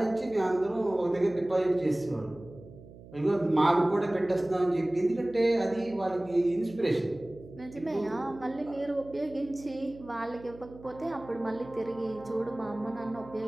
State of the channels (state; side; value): noise; right; hum, 19 dB below the sound